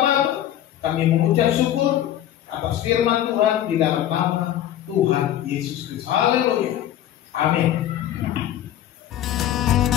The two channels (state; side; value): quieter; right; 11.8 dB